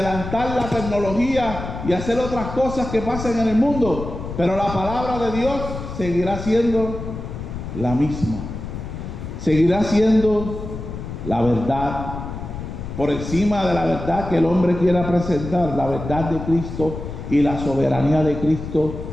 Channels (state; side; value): noise; left; rumble, 8 dB below the sound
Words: la tecnología y hacer otras cosas que pasen en el mundo. Pero la palabra de Dios seguirá siendo la misma. Seguirá siendo la verdad. Por encima de la verdad que el hombre quiera presentar, la verdad de Cristo y la soberanía de Cristo